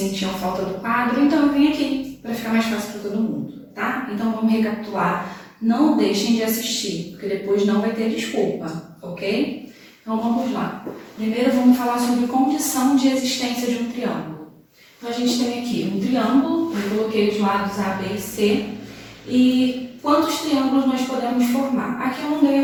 falta do quadro, então eu vim aqui para ficar mais fácil para todo mundo, tá? Então vamos recapitular, não deixem de assistir, porque depois não vai ter desculpa, ok? Então vamos lá. Primeiro vamos falar sobre condição de existência de um triângulo. Então, a gente tem aqui um triângulo, eu coloquei os lados A, B e C, e quantos triângulos nós podemos formar? Aqui eu não dei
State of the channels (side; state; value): both; identical; correlation 1.00